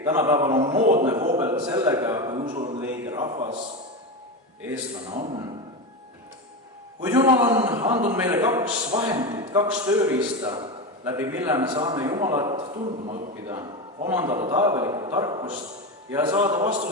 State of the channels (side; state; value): both; normal; correlation 0.18